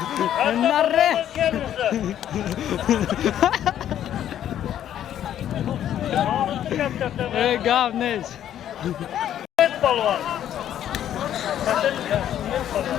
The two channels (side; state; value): right; quieter; 10.8 dB